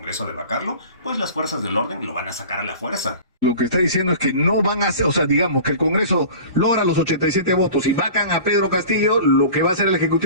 de vacarlo, pues las fuerzas del orden lo van a sacar a la fuerza. Lo que está diciendo es que no van a hacer, o sea, digamos que el Congreso logra los 87 votos y vacan a Pedro Castillo, lo que va a hacer el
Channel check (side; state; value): both; inverted; correlation -0.39